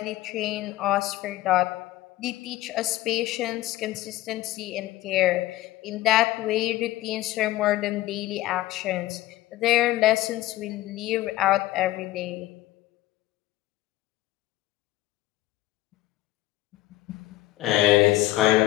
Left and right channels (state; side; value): quieter; right; 16.4 dB